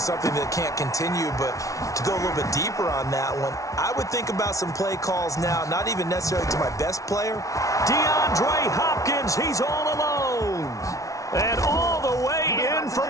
that can't continue, but to go a little bit deeper on that one, I would think about some play calls now, not even necessarily to my best player. DeAndre Hopkins, he's all alone. And all the way in for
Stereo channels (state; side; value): late; right; 0.16 ms